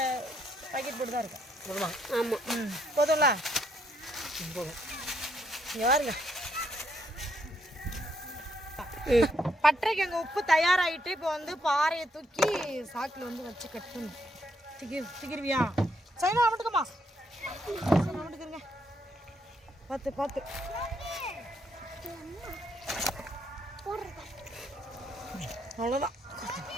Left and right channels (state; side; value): normal; both; correlation 0.74